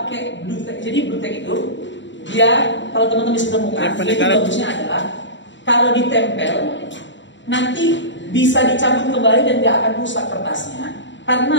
blue tape? Jadi blue tape itu dia, kalau teman-teman bisa temukan, dia itu bagusnya adalah kalau ditempel nanti bisa dicabut kembali dan tidak akan rusak kertasnya.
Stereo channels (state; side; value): late; right; 0.54 ms